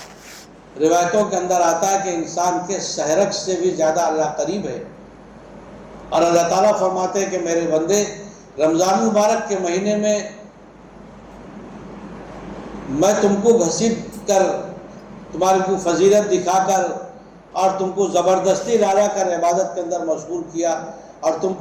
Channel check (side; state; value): both; identical; correlation 1.00